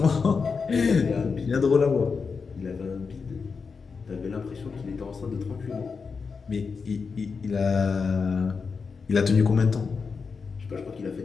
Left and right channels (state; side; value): quieter; right; 5.2 dB